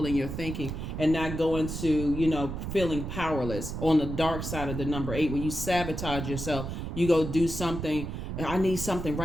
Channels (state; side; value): noise; right; rumble, 6 dB below the sound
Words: in your thinking, and not go into, feeling powerless. On the dark side of the number 8, when you sabotage yourself, you go do something. I need something